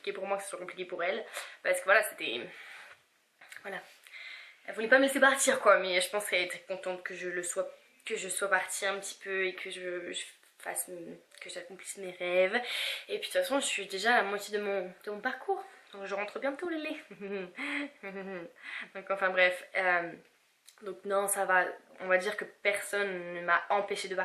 pour moi que ce soit compliqué pour elle. Parce que voilà, c'était... Voilà. Elle voulait pas me laisser partir quoi, mais je pense qu'elle était contente que je sois partie un petit peu et que que j'accomplisse mes rêves. Et puis de toute façon je suis déjà à la moitié de mon parcours, donc je rentre bientôt Lélé. Donc enfin bref, donc non ça va, on va dire que personne ne m'a empêché de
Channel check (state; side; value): identical; both; correlation 1.00